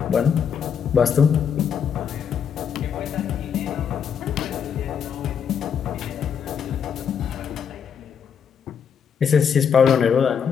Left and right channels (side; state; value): right; quieter; 7.4 dB